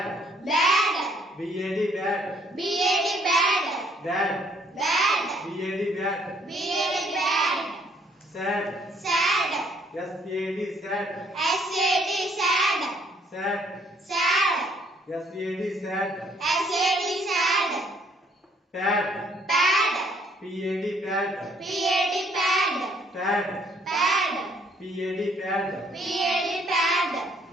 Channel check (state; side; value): normal; both; correlation 0.64